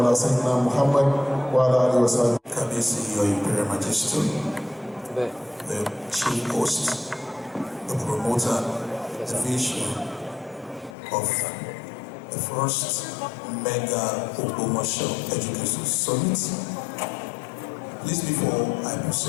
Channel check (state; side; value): drops out; right; at 11.0 s